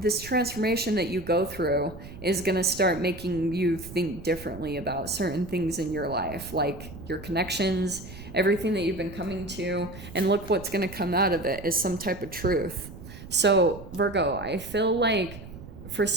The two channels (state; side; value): noise; right; rumble, 14 dB below the sound